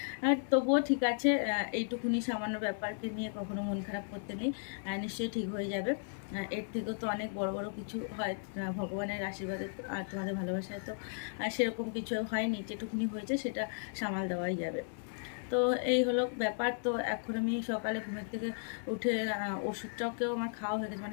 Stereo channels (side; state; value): right; silent; 54 dB below the other